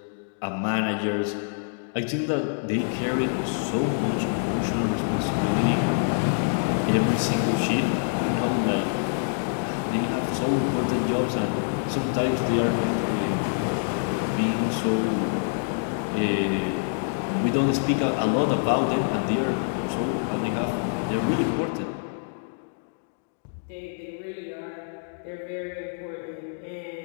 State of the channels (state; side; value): silent; right; digital silence